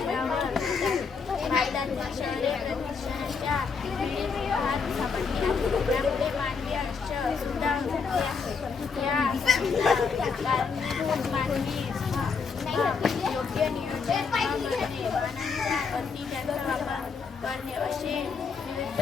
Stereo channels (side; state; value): right; quieter; 5.4 dB